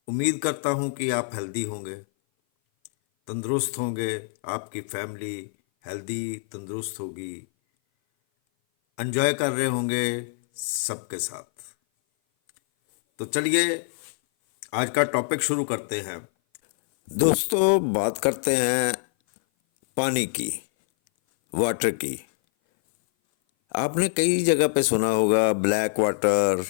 उम्मीद करता हूं कि आप हेल्दी होंगे, तंदुरुस्त होंगे, आपकी फैमिली हेल्दी तंदुरुस्त होगी, एंजॉय कर रहे होंगे सबके साथ। तो चलिए आज का टॉपिक शुरू करते हैं। दोस्तों, बात करते हैं पानी की, वाटर की। आपने कई जगह पे सुना होगा ब्लैक वाटर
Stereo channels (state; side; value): silent; right; 57 dB below the other